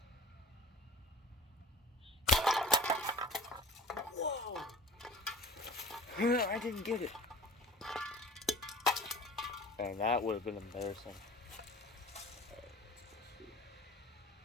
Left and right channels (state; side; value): normal; both; correlation 0.43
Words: Whoa! I didn't get it. And that would have been embarrassing.